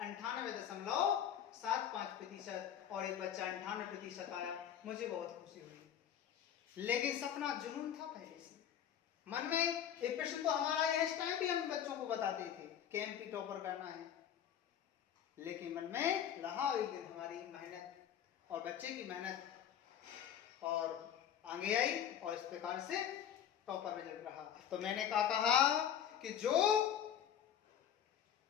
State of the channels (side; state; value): right; quieter; 9.6 dB